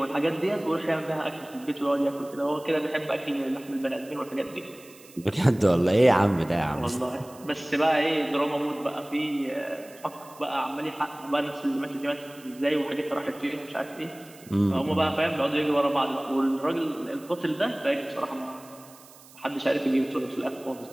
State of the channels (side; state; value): right; noise; hiss, 22 dB below the sound